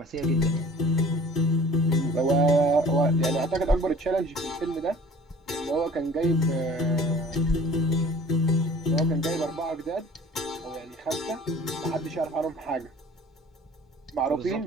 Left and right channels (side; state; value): both; normal; correlation 0.48